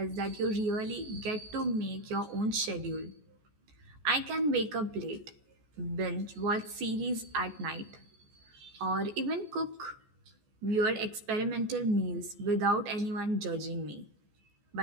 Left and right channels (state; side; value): late; left; 14 ms